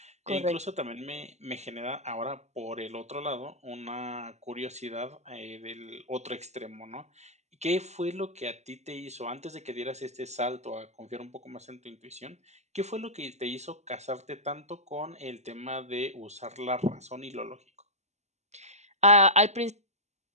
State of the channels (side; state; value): left; late; 0.33 ms